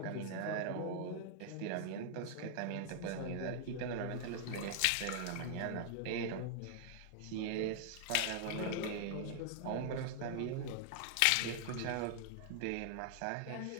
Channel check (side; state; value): both; different; correlation 0.00